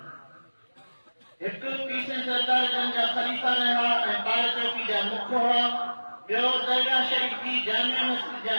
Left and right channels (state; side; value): inverted; both; correlation -1.00